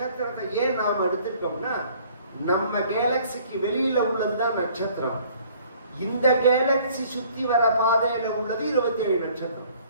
ஏன் நாம் எடுத்துட்டோம்னா நம்ம கேலக்சிக்கு வெளியில உள்ளதுதான் நட்சத்திரம். இந்த கேலக்சி சுத்தி வர பாதையில உள்ளது 27 நட்சத்திரம்.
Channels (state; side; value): inverted; both; correlation -0.56